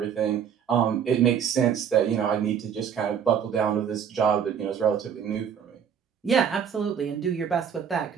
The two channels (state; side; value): quieter; left; 7.9 dB